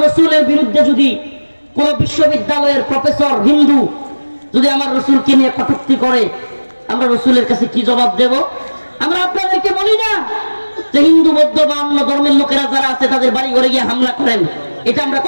রাসূলের বিরুদ্ধে যদি কোন বিশ্ববিদ্যালয়ের প্রফেসর হিন্দু যদি আমার রাসূলকে নিয়ে কটূক্তি করে, আমরা রাসূলের কাছে কি জবাব দেব? আমরা আপনাদেরকে বলি না যে হিন্দু, বৌদ্ধ বা অন্য ধর্মের লোকেরা যারা আছে তাদের বাড়ি ঘরে গিয়ে হামলা করেন, এটা আমরা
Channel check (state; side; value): inverted; both; correlation -1.00